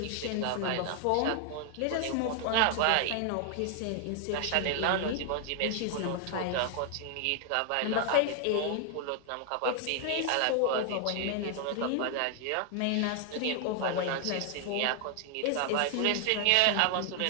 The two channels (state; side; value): different; both; correlation 0.00